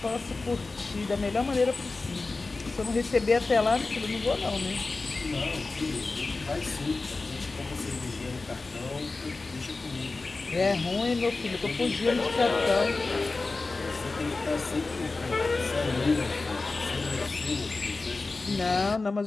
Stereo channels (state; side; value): quieter; right; 3.6 dB